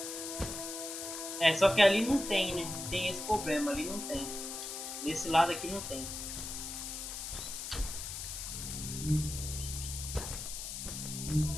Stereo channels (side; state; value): left; noise; hiss, 6 dB below the sound